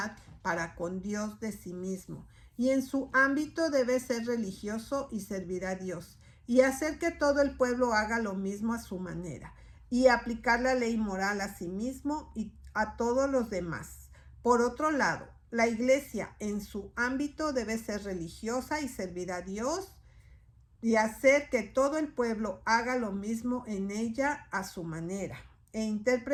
para con Dios de sí mismo, y en su ámbito debe ser religioso y servir a Dios, y hacer que todo el pueblo haga lo mismo a su manera, y aplicar la ley moral a sí mismo y a todos los demás. Por otro lado, la Iglesia en su ámbito debe ser religiosa y servir a Dios, y hacer que todo el pueblo haga lo mismo en ella a su manera, e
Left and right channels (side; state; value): both; identical; correlation 1.00